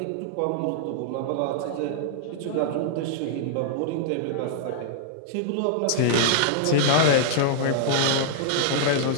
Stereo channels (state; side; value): different; both; correlation -0.01